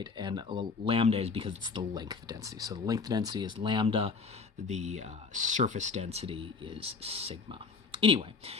And lambda is because it's the length density. So the length density is lambda, the surface density is sigma. Anyway,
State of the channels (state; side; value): quieter; right; 4.7 dB